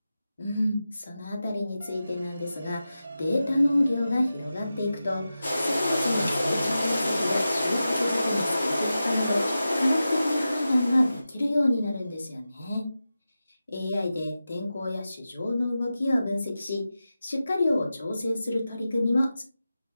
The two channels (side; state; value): both; inverted; correlation -0.93